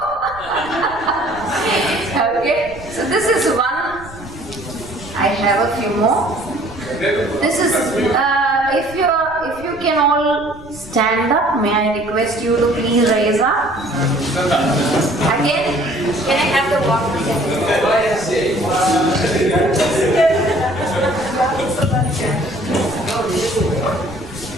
Okay. So this is one. I have a few more. This is if you can all stand up, may I request you to please raise up. Again, can I have the water?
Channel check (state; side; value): noise; right; rumble, 20 dB below the sound